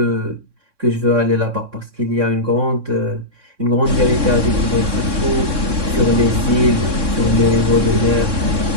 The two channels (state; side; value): late; left; 3.6 ms